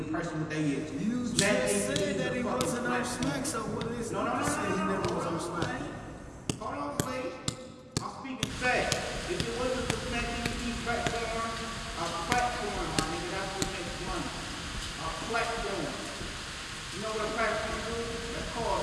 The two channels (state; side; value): identical; both; correlation 1.00